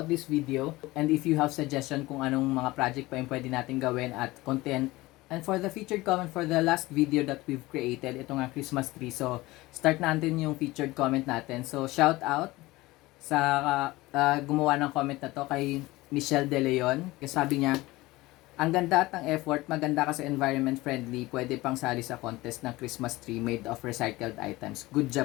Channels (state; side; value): quieter; right; 19.7 dB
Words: this video. And if you have suggestion kung anong mga project pa yung pwede natin gawin at content. And for the featured comment for the last video that we've created, ito nga Christmas tree. So, start natin yung featured comment natin. So, shout out sa gumawa ng comment na to kay Michelle De Leon. Kasi sabi niya, ang ganda at ang effort, maganda kasi environment friendly, pwede pang sali sa contest ng Christmas tree made of recycled items. Good